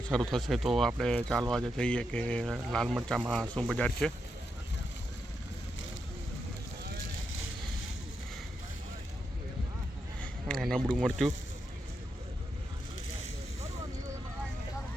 શરૂ થશે તો આપણે ચાલો આજે જઈએ કે લાલ મરચાંમાં શું બજાર છે. નબળું મરચું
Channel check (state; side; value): normal; both; correlation 0.84